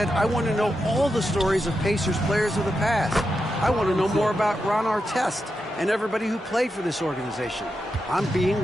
I want to know all the stories of Pacers players of the past. I want to know more about Ron Artest and everybody who played for this organization. I'm being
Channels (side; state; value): both; normal; correlation 0.87